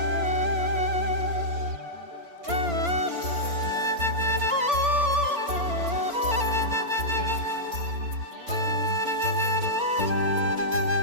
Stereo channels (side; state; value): left; late; 4.4 ms